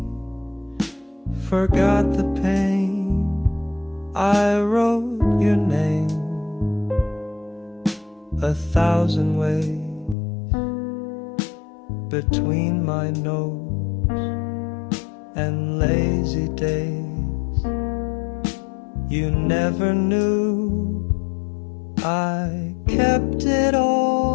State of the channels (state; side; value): drops out; right; at 10.2 s